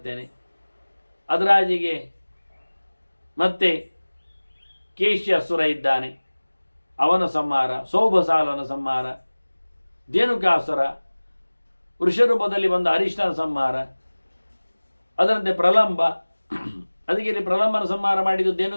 ಅದರಾಜಿಗೆ ಮತ್ತೆ ಕೇಶ್ಯ ಅಸುರ ಇದ್ದಾನೆ, ಅವನ ಸಂಹಾರ. ಸೌಭಸಾಲನ ಸಂಹಾರ, ಧೇನುಕಾಸುರ, ವೃಷರೂಪದಲ್ಲಿ ಬಂದ ಹರಿಷ್ಠನ ಸಂಹಾರ. ಅದರಂತೆ ಪ್ರಲಂಬ. ಅದಕ್ಕೆ ಇಲ್ಲಿ ಪ್ರಲಂಬನ ಸಂಹಾರ ಮಾಡಿದ್ದು,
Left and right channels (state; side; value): inverted; both; correlation -1.00